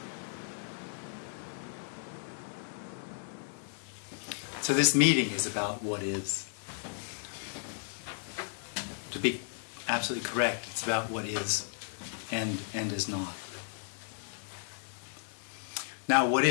So this meeting is about what is. To be absolutely correct, it's about what is and is not. Now, what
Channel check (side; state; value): right; silent; 55 dB below the other